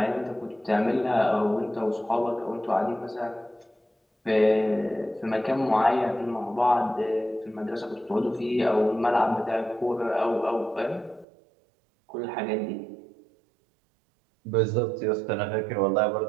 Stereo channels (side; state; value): left; drops out; at 11.2 s